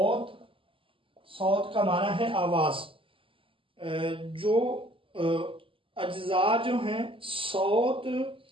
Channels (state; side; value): late; left; 0.25 ms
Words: کا معنی ہے آواز، جو اجزاء جو ہیں صوت